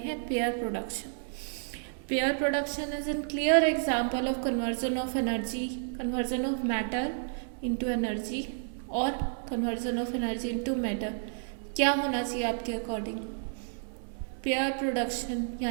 हैं pair production. Pair production is an clear example of conversion of energy, conversion of matter into energy और conversion of energy into matter. क्या होना चाहिए आपके अकॉर्डिंग? पेयर प्रोडक्शन,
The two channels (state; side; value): silent; left; 57 dB below the other